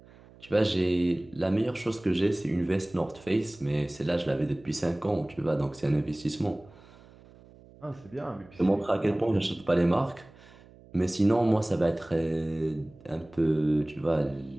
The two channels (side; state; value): right; noise; hum, 24 dB below the sound